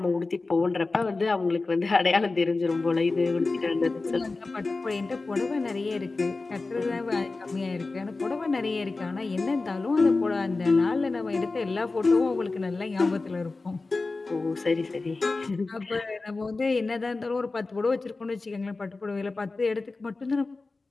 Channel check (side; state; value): right; quieter; 3.6 dB